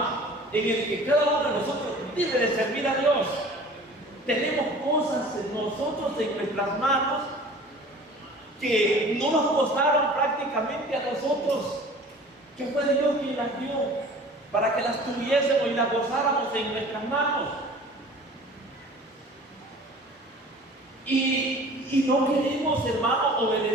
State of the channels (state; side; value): normal; both; correlation 0.45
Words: en el que cada uno de nosotros debe de servir a Dios. Tenemos cosas en nosotros, en nuestras manos, que no nos costaron prácticamente a nosotros, que fue Dios quien las dio, para que las tuviésemos y las gozáramos en nuestras manos. Y no queremos, hermano,